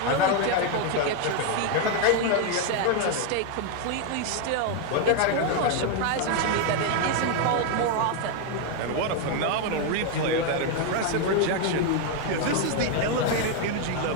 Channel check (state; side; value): different; both; correlation 0.01